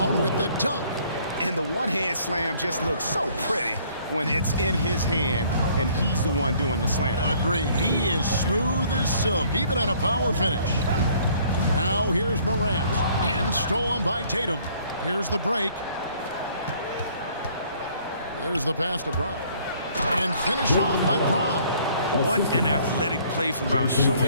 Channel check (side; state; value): both; inverted; correlation -0.59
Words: with the dunk. And the one-hand slam just looks so pretty when it's in his hand and he's the one doing the slam. Agreed. He is smooth as silk, even on a power finish. Now here's Morant. And stolen by Tatum. Here's the break. There's the pass to Brown. And finished off by Brown. What an athletic play from Brown,